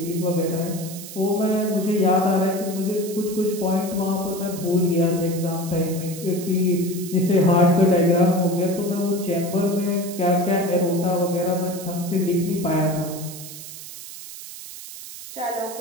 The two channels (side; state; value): right; noise; hiss, 13 dB below the sound